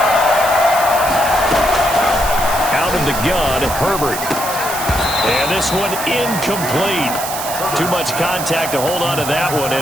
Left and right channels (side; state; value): right; noise; hiss, 7 dB below the sound